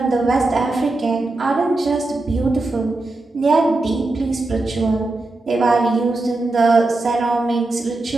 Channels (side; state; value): left; quieter; 3.0 dB